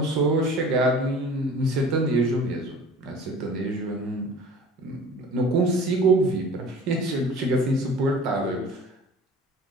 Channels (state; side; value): normal; both; correlation 0.43